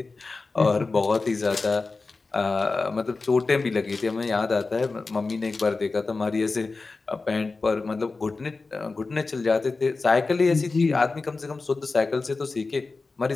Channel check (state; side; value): quieter; right; 3.9 dB